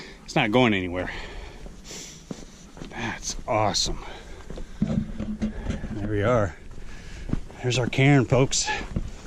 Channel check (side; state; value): both; identical; correlation 1.00